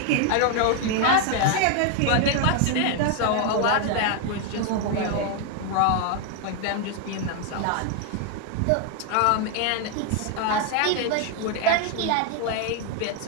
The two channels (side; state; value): both; different; correlation 0.01